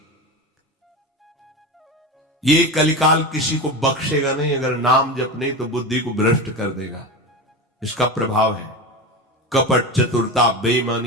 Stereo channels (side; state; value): both; normal; correlation 0.23